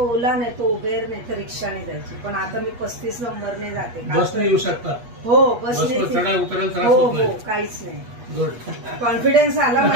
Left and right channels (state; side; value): late; left; 8.3 ms